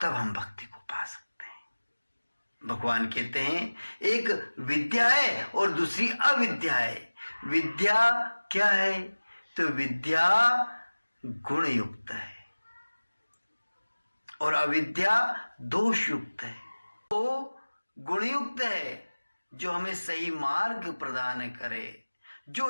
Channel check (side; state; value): both; inverted; correlation -1.00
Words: तब हम भक्ति को पा सकते हैं। भगवान कहते हैं एक विद्या है और दूसरी अविद्या है। विद्या क्या है? तो विद्या गुण युक्त है और अविद्या दोष युक्त है। तो गुणयुक्त है जो हमें सही मार्ग प्रदान करे, जो